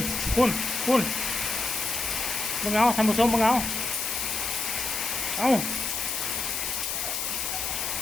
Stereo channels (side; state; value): left; noise; hiss, 2 dB below the sound